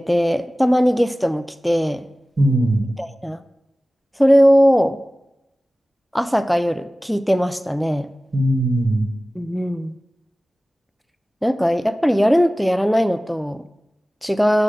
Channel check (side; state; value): both; normal; correlation 0.97